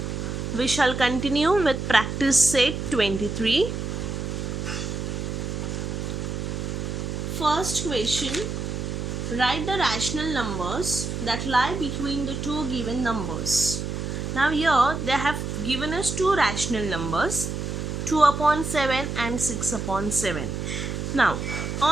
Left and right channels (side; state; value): right; noise; hum, 4 dB below the sound